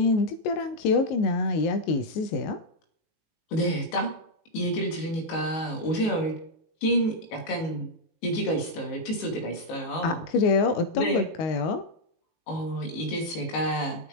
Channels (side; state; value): right; late; 19 ms